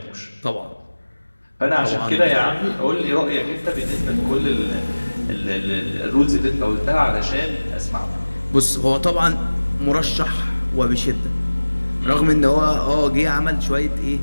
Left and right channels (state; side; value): inverted; both; correlation -1.00